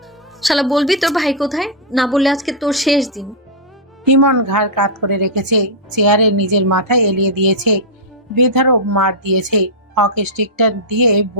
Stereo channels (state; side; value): normal; both; correlation -0.09